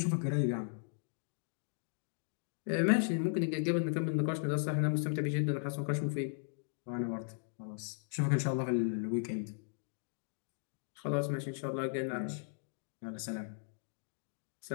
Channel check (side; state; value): right; silent; digital silence